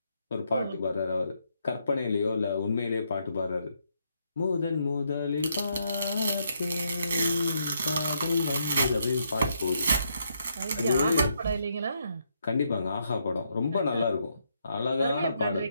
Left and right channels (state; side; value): inverted; both; correlation -0.76